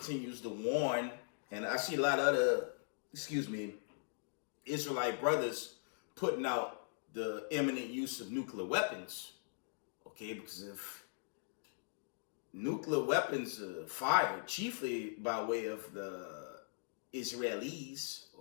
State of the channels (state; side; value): silent; right; digital silence